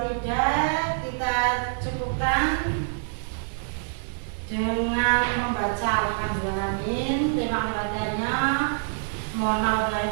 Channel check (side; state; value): left; silent; digital silence